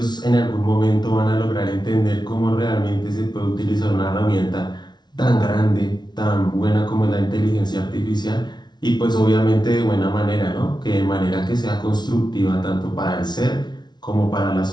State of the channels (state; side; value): late; right; 0.20 ms